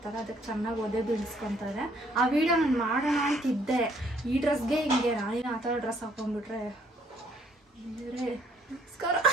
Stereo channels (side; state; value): both; normal; correlation 0.65